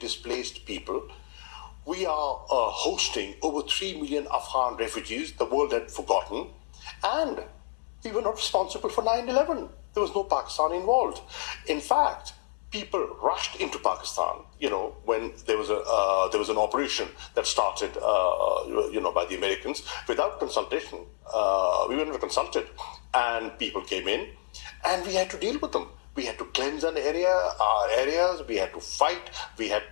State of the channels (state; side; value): silent; right; digital silence